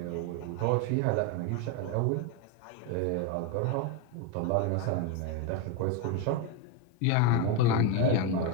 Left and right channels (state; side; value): different; both; correlation 0.02